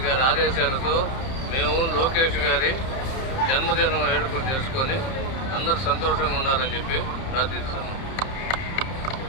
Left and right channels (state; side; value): late; right; 30 ms